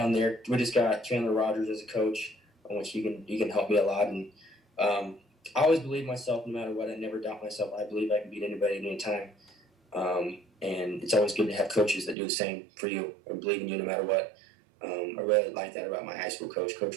there. We just got Chandler Rogers as a coach, on which he can help me a lot. And I always believe myself, no matter what. I never doubt myself. I believe I can beat anybody at any time. And it's always good to have coaches that do the same for you or believe in you no matter what. I really like that about my high school coach,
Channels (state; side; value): drops out; left; at 12.2 s